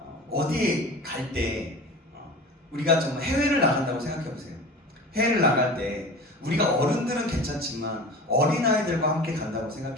어디에 갈 때 우리가 정말 해외를 나간다고 생각해 보세요. 해외를 나갈 때 우리가 어른들은 괜찮지만 어린아이들과 함께 간다고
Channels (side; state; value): both; normal; correlation 0.36